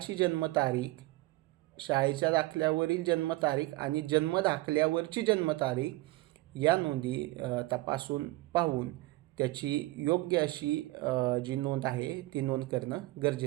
जन्मतारीख, शाळेच्या दाखल्यावरील जन्मतारीख आणि जन्मदाखल्यावरची जन्मतारीख या नोंदी तपासून पाहून त्याची योग्य अशी जी नोंद आहे ती नोंद करणं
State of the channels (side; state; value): left; quieter; 19.8 dB